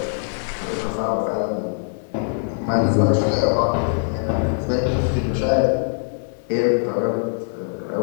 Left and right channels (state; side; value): silent; right; digital silence